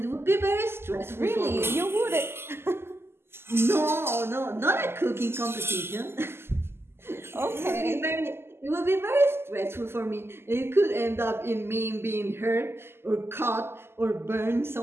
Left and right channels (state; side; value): late; left; 0.12 ms